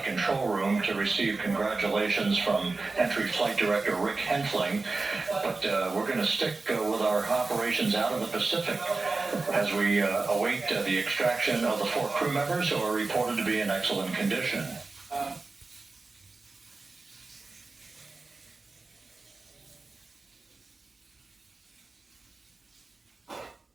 control room to receive congratulations from Entry Flight Director Rick Henfling. But we're going to stick with our operations out of the Pacific as we await the extraction of the 4 crew members who are reported to be in excellent condition.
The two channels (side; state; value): left; quieter; 3.7 dB